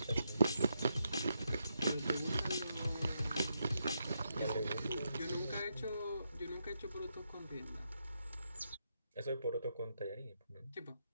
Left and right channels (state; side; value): inverted; both; correlation -0.82